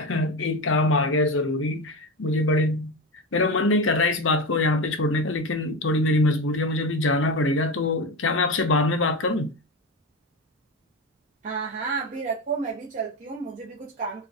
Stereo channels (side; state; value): both; normal; correlation 0.20